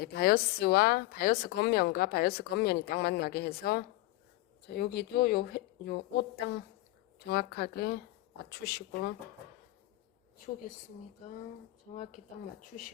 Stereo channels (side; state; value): right; quieter; 18.4 dB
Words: 바이어스 겉면과 바이어스 겉면이 딱 만나게 해서 자, 여기도 요 옷 딱 정확하게 맞추시고 치우겠습니다. 정확히 딱